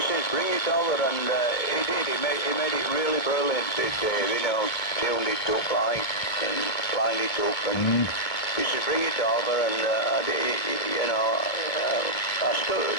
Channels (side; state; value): right; late; 2.2 ms